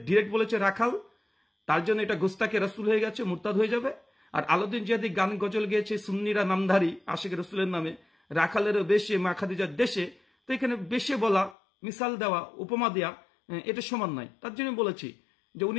ডিরেক্ট বলেছে রাখাল, তার জন্য এটা গোস্তাকে রসুল হয়ে গেছে, মুরতাদ হয়ে যাবে। আর আলাউদ্দিন জিহাদি গান গজল গেয়েছে সুন্নিরা নামধারী আশিক রসুলের নামে, রাখালেরও বেশে মা খাদিজার দেশে। তো এখানে বেশে বলা, মিসাল দেওয়া, উপমা দেওয়া এটা সমান নয়। তার জন্য বলেছি যে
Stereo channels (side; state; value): right; drops out; at 11.6 s